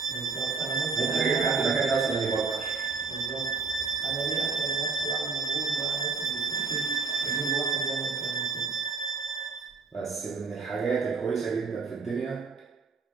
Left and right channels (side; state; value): left; quieter; 4.7 dB